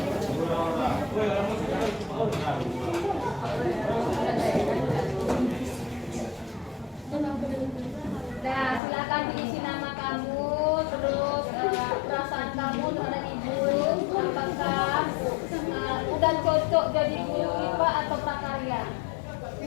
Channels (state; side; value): drops out; right; at 8.8 s